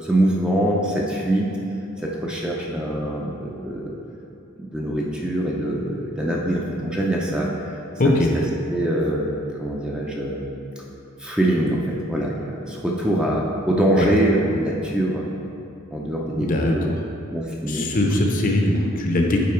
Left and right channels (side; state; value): both; normal; correlation 0.66